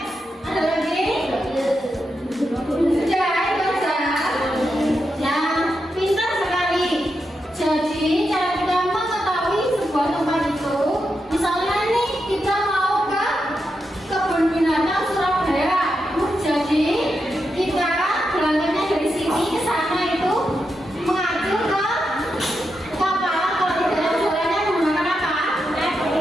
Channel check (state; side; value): normal; both; correlation 0.86